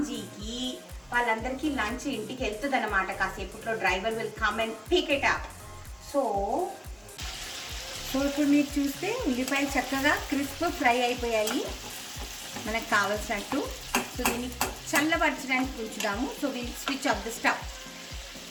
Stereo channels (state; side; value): identical; both; correlation 1.00